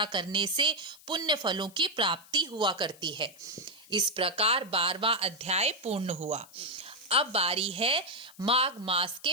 करने से पुण्य फलों की प्राप्ति हुआ करती है। इस प्रकार 12वां अध्याय पूर्ण हुआ। अब बारी है माघ मास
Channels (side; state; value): left; noise; hiss, 23 dB below the sound